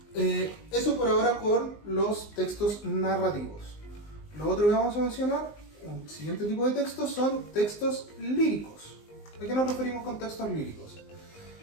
eso por ahora con los textos narrativos. Lo otro que vamos a mencionar, un siguiente tipo de textos, son textos líricos. ¿A qué nos referimos con textos líricos?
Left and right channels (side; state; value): right; late; 19 ms